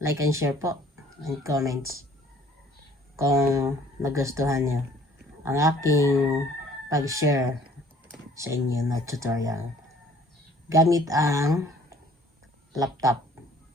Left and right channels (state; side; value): normal; both; correlation 0.55